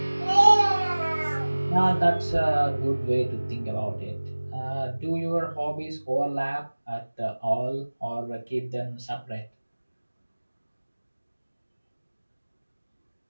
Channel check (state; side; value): inverted; both; correlation -1.00